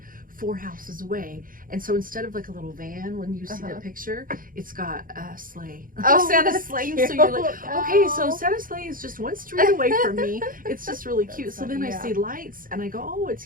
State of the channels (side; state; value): left; late; 0.40 ms